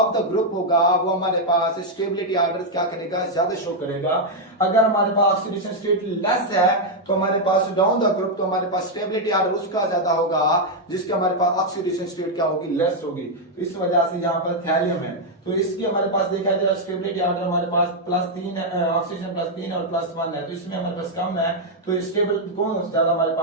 द ग्रुप होगा वो हमारे पास स्टेबिलिटी ऑर्डर क्या करेगा ज्यादा शो करेगा। अगर हमारे पास ऑक्सीडेशन स्टेट लेस है तो हमारे पास डाउन द ग्रुप, तो हमारे पास स्टेबिलिटी ऑर्डर उसका ज्यादा होगा जिसके हमारे पास ऑक्सीडेशन स्टेट क्या होगी लेस होगी, तो इस वजह से यहाँ पर थैलियम है, तो इसकी हमारे पास देखा जाए स्टेबिलिटी ऑर्डर हमारे पास +3 है, ऑक्सीजन +3 और +1 है, तो इसमें हमारे पास कम है, तो स्टेबल कौन ज्यादा हमारे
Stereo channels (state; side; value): normal; both; correlation -0.01